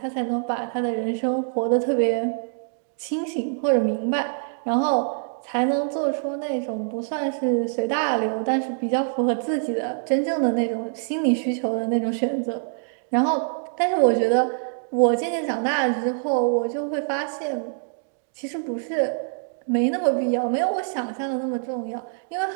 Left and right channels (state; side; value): silent; left; digital silence